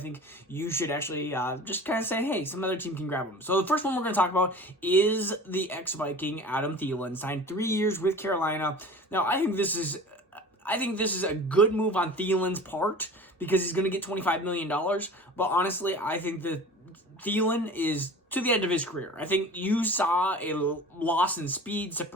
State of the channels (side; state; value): both; normal; correlation 0.39